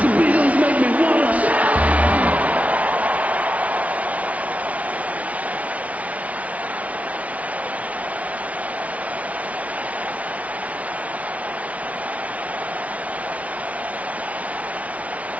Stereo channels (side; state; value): left; late; 0.067 ms